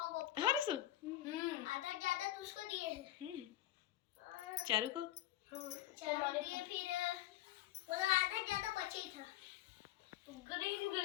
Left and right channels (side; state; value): right; quieter; 14.1 dB